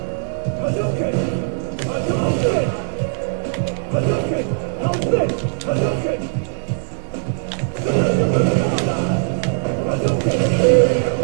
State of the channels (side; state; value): left; silent; digital silence